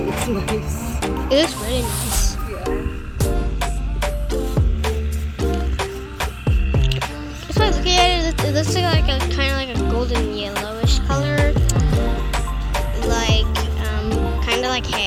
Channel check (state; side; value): identical; both; correlation 1.00